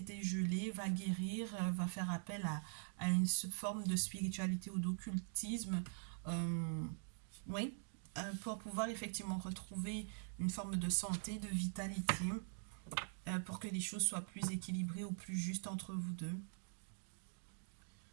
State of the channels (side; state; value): left; silent; digital silence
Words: gelé, va guérir, va faire appel à une forme de spiritualité ou d'occultisme. euh, oui, pour pouvoir effectivement retrouver une forme de santé, de vitalité, pour que les choses soient plus équilibrées ou plus justes entre vous deux.